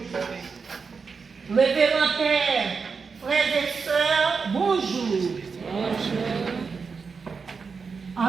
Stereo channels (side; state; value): left; quieter; 5.2 dB